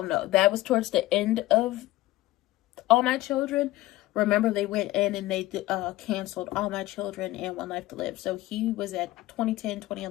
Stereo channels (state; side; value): quieter; right; 17.3 dB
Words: no, that was towards the end of All My Children. Remember, they went in and they canceled All My Children and One Life to Live. So he was at 2010,